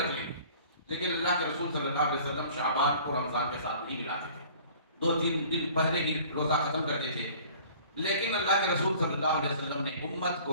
لیں، لیکن اللہ کے رسول صلی اللہ علیہ وسلم شعبان کو رمضان کے ساتھ نہیں ملاتے تھے، 2-3 دن پہلے ہی روزہ ختم کرتے تھے۔ لیکن اللہ کے رسول صلی اللہ علیہ وسلم نے امت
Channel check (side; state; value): both; inverted; correlation -0.49